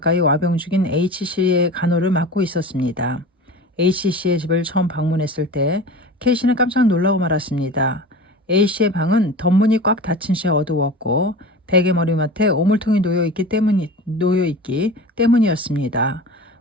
와병 중인 H씨의 간호를 맡고 있었습니다. H씨의 집을 처음 방문했을 때 K씨는 깜짝 놀라고 말았습니다. A씨의 방은 덧문이 꽉 닫힌 채 어두웠고 베개 머리맡에 오물통이 놓여있기 때문이었습니다.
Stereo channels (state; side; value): normal; both; correlation 0.34